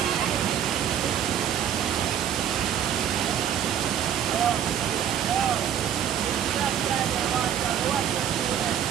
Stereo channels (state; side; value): quieter; left; 9.4 dB